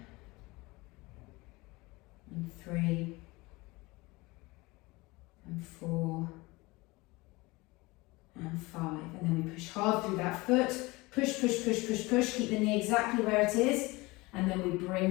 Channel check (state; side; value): quieter; right; 22.9 dB